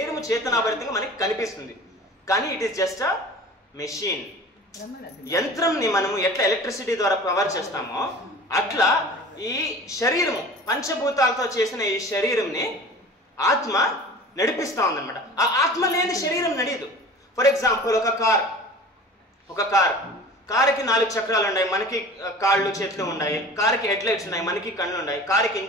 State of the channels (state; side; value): normal; both; correlation 0.40